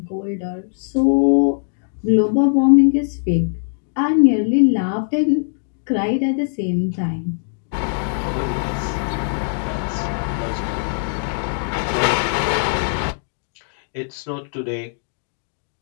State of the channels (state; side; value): silent; right; digital silence